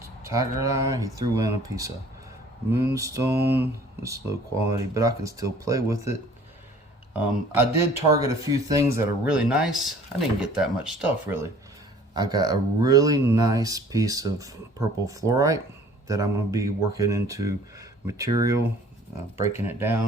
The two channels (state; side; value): normal; both; correlation 0.52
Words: tiger eye, he threw in a piece of moonstone. It's low quality, but I can still play with it. I did target a few things that are really nice. I didn't get that much stuff really. I got a really nice piece of purple fluorite that I'm going to be working into material breaking it